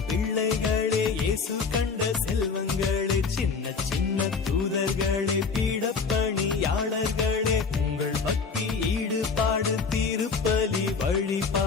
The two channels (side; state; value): right; quieter; 5.0 dB